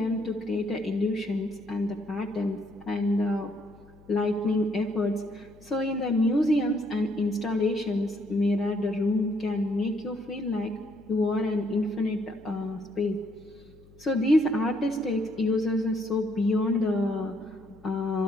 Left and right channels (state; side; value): noise; left; hum, 25 dB below the sound